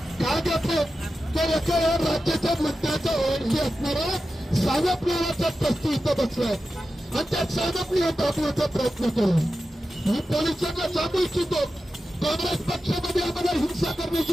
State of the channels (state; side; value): normal; both; correlation 0.92